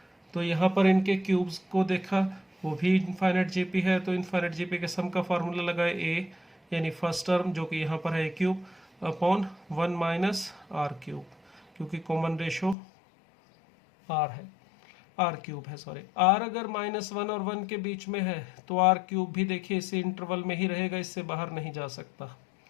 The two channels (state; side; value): drops out; right; at 12.8 s